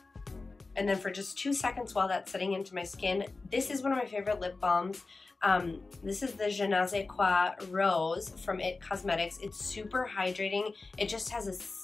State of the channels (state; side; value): quieter; right; 3.7 dB